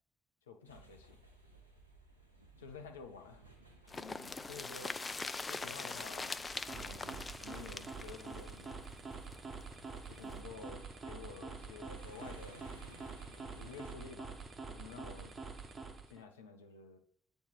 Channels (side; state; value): both; normal; correlation 0.67